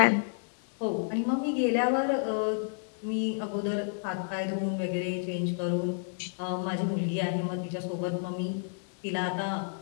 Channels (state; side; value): silent; right; 58 dB below the other